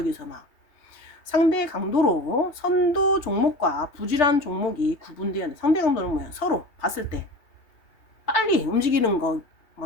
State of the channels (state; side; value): late; right; 2.8 ms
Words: 막. 상대 강도로 선도 종목과 부실한 종목이 구분되어야 돼. 상대 강도는 뭐야? 서로 봤을 때 빨리 움직이는 거,